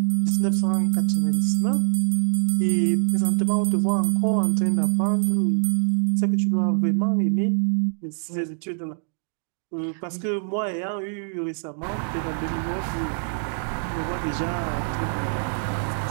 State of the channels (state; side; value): silent; left; digital silence